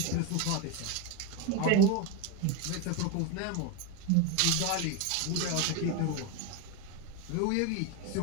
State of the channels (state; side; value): different; both; correlation 0.03